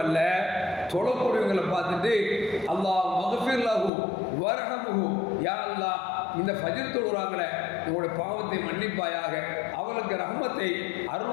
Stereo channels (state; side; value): drops out; right; at 3.9 s